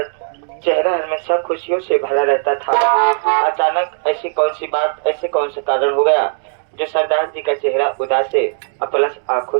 चेहरा हमेशा खुशियों से भरा रहता था। अचानक ऐसी कौन सी बात, ऐसे कौन सा कारण हो गया जो सरदार जी का चेहरा उदास है, प्लस आंखों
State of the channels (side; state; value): left; silent; digital silence